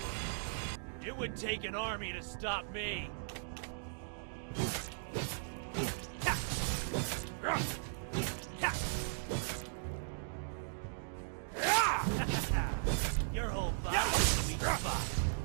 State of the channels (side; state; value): left; silent; digital silence